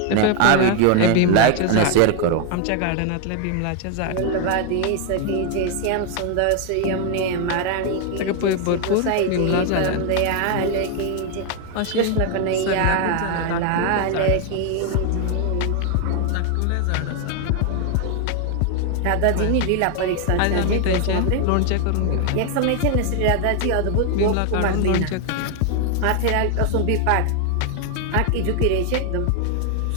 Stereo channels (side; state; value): both; different; correlation 0.01